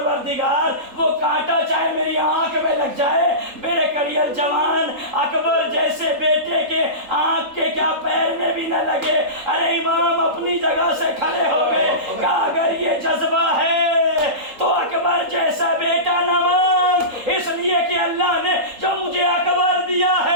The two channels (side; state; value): left; late; 3.8 ms